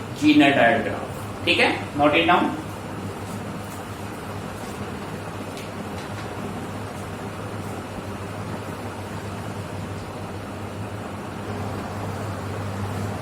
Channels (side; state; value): both; identical; correlation 1.00